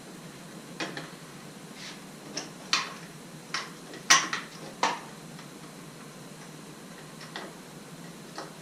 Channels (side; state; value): both; identical; correlation 1.00